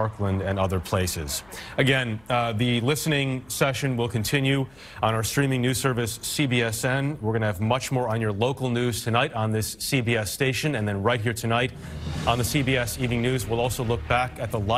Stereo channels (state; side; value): noise; left; hum, 29 dB below the sound